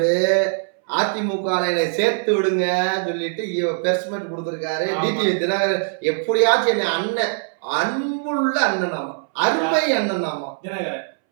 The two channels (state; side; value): silent; left; 63 dB below the other